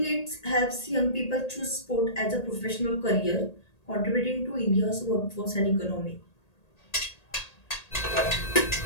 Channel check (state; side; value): late; right; 1.8 ms